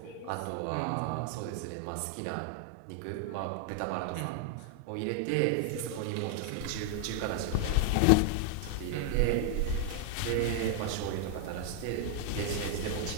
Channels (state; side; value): different; both; correlation 0.00